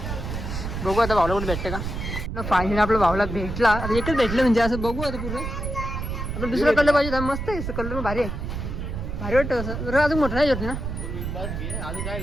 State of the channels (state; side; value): noise; right; rumble, 5 dB below the sound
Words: बघू आता भावला कुठे भेटते का. फायनली आपला भावला भेटला. आता एकच भेटलं म्हणजे असं बघू आता पुढं. आपण दुसरं कलर पाहिजे, मस्त आहे कलर, भारी आहे, भारी वाटतं असं. जरा अजून मोठं नाही होत ना,